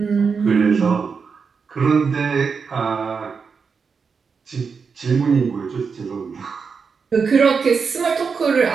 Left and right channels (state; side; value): quieter; left; 5.5 dB